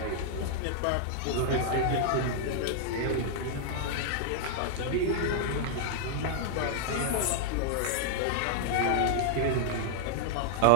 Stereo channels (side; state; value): both; different; correlation -0.01